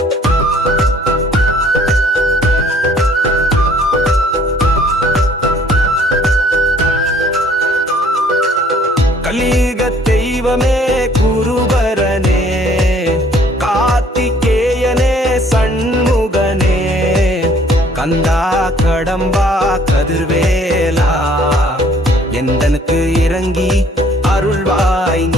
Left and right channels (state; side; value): normal; both; correlation 0.59